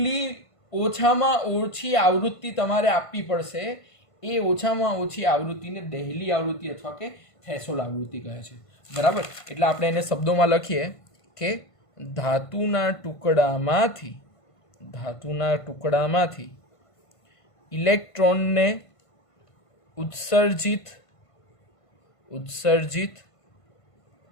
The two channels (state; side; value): late; right; 1.5 ms